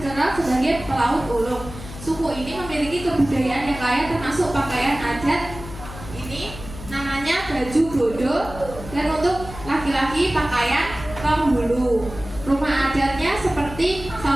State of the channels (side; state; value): left; noise; hum, 13 dB below the sound